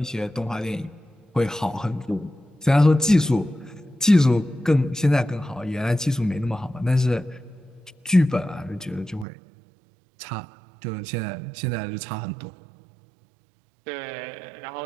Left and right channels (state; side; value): drops out; left; at 9.2 s